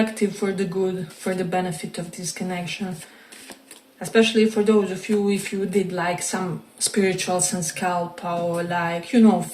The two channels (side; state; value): both; identical; correlation 1.00